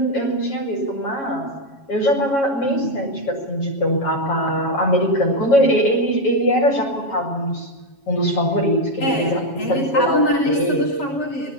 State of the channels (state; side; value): late; right; 7.2 ms